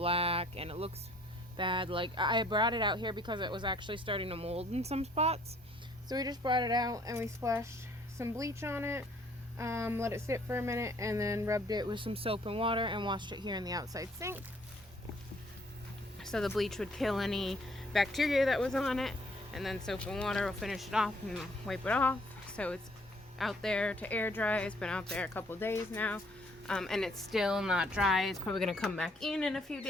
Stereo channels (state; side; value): normal; both; correlation 0.61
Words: and it looks bad. Like, I brought it out here because it was actually starting to mold in some spots. So we just brought it out and we splashed some bleach on it, let it sit for a minute, and then rubbed it with some soap and water and washed it here in the outside sink. So the bleach would kill any bacteria that was on it, and then soap and water will finish it off and wipe it off. So it's out there to air dry. It's been out there a couple days now, and it's still not dry. It's probably going to come back in a few